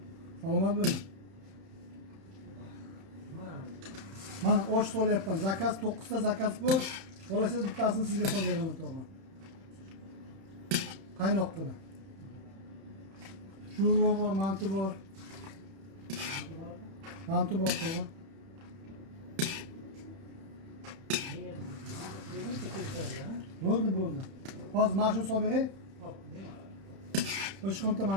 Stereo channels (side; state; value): left; late; 31 ms